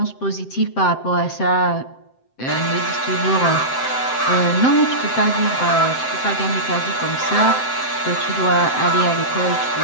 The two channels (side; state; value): right; late; 7.7 ms